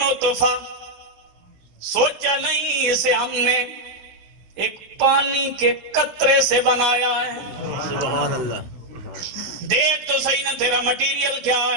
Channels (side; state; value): left; late; 16 ms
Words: سوچا نہیں اسے ہم نے ایک پانی کے قطرے سے بنایا ہے۔ سبحان اللہ۔ دیکھ تو صحیح نہ تیرا مٹیریل کیا